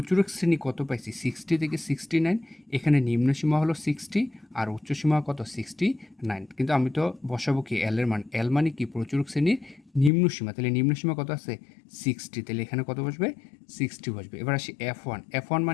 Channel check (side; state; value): right; drops out; at 10.1 s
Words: শ্রেণী কত পাইছি? 60 থেকে 69। এখানে নিম্নসীমা হলো 60 আর উচ্চসীমা কত? 69। কিন্তু আমি তো বসাবো কি? এল এর মান। এল মানে কি? প্রচুরক শ্রেণীর নিম্নসীমা। তাহলে নিম্নসীমা কত আছে? 60। তাহলে এখানে কত বসবে? 60 বসবে। এবার আসি F1। F1